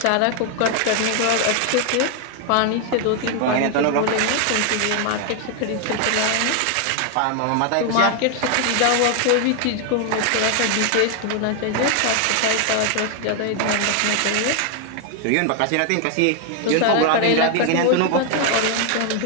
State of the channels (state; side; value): different; both; correlation 0.00